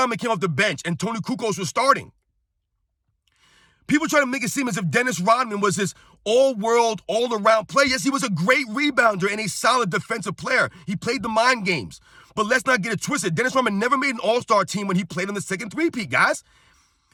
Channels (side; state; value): both; identical; correlation 1.00